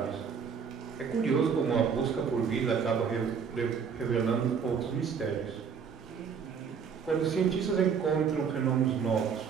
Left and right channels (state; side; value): quieter; left; 6.6 dB